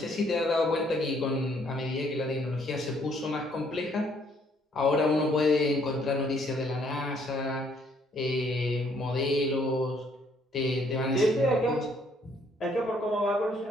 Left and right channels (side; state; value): both; normal; correlation 0.66